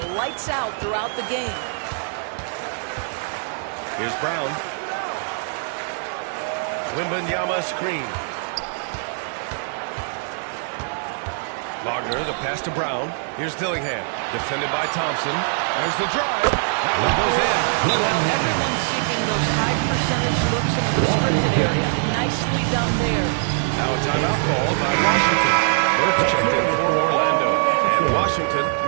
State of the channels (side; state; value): left; silent; digital silence